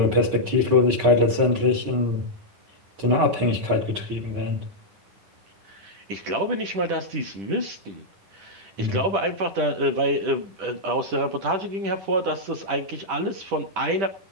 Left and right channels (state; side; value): late; left; 10 ms